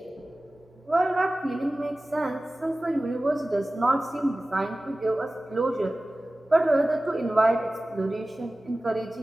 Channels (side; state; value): both; normal; correlation 0.97